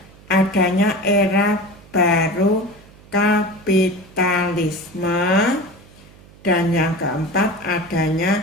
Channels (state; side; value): noise; right; hum, 24 dB below the sound